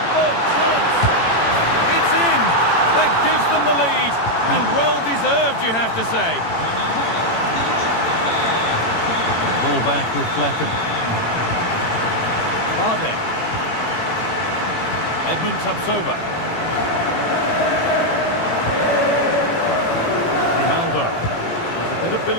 Oh, chance! It's in! That gives them the lead, and well-deserved, you have to say. Ball back with Blackham. Barde. Edmund Tapsoba. Grimaldo. Bit of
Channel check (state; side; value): late; right; 18 ms